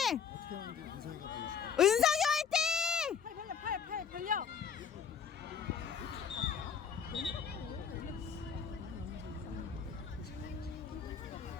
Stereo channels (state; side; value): quieter; right; 7.1 dB